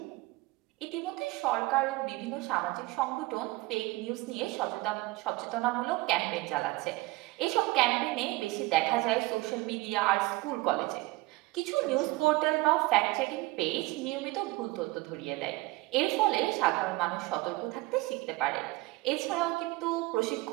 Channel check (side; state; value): left; quieter; 20.9 dB